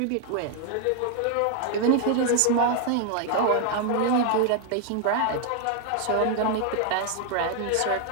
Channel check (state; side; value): different; both; correlation 0.00